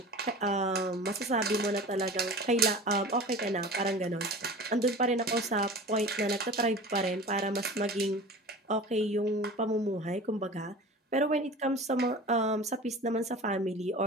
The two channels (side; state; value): both; normal; correlation 0.37